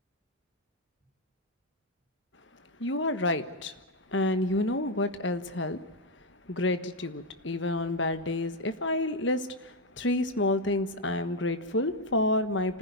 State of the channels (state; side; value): normal; both; correlation 0.04